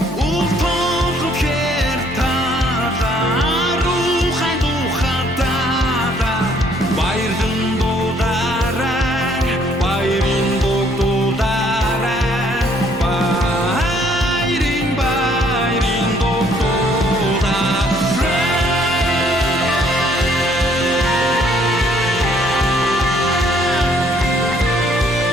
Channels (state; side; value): normal; both; correlation 0.64